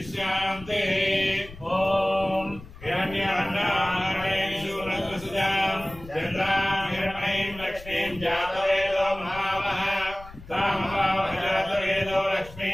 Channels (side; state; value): left; noise; rumble, 17 dB below the sound